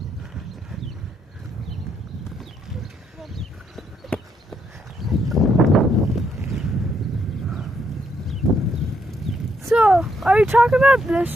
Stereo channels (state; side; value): normal; both; correlation 0.75